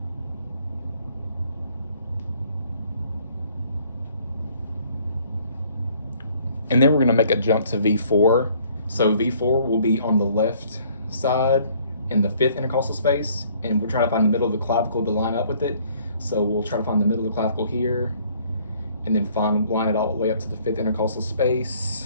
And then we're going to make a jump to V4. So V4 will be on the left side in the 5th intercostal space, and we're trying to find the middle of the clavicle to line up with it. So we'll try to find the middle of the clavicle here, and then line it all the way up to the 5th intercostal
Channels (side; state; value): both; inverted; correlation -0.60